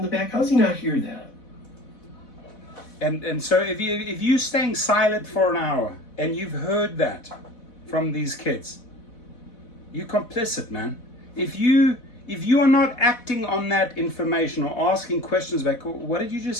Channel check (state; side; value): late; right; 4.1 ms